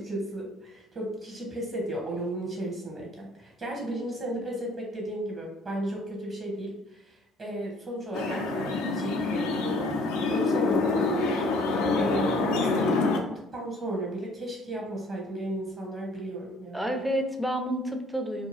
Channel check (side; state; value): both; normal; correlation 0.57